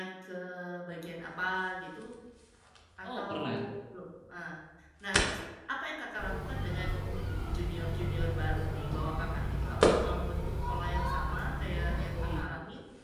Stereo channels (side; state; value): both; identical; correlation 1.00